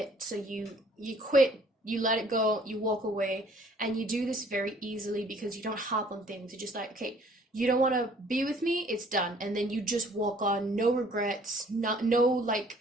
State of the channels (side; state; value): both; normal; correlation 0.57